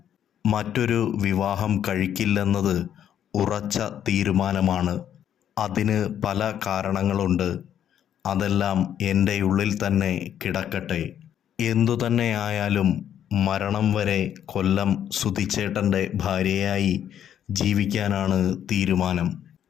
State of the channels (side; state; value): right; quieter; 9.9 dB